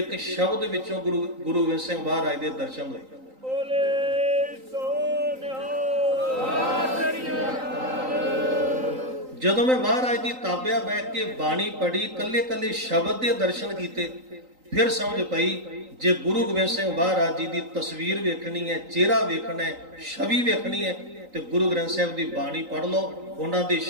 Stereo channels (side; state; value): left; late; 3.9 ms